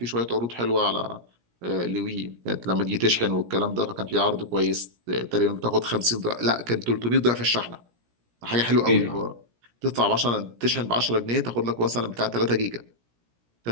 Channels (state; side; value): late; left; 17 ms